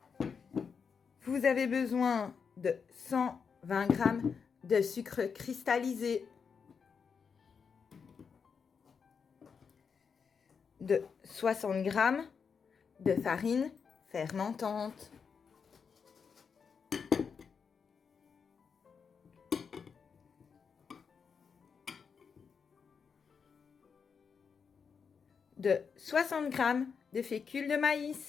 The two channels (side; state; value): right; quieter; 6.1 dB